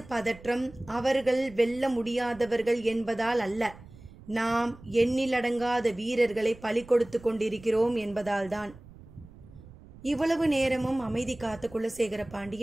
பதற்றம் அவர்கள் வெல்ல முடியாதவர்கள் என்பதால் அல்ல, நாம் எண்ணிலடங்காத வீரர்களை பலி கொடுத்து கொண்டிருக்கிறோம் என்பதால்தான். இவ்வளவு நேரமும் அமைதி காத்த குலசேகர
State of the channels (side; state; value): right; noise; rumble, 20 dB below the sound